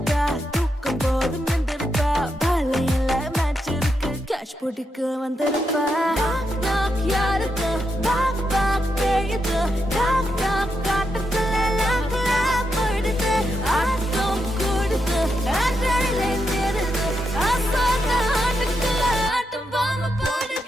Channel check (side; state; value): both; normal; correlation 0.83